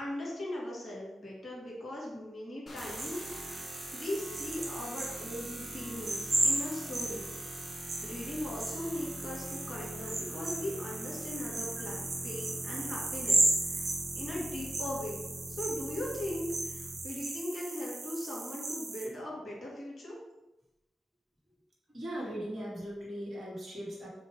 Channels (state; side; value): normal; both; correlation 0.89